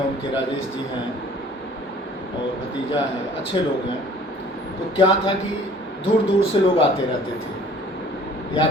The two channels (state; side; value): normal; both; correlation 0.52